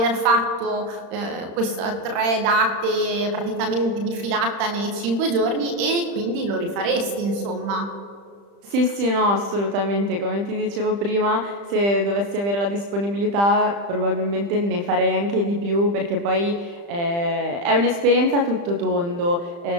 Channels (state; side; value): late; left; 35 ms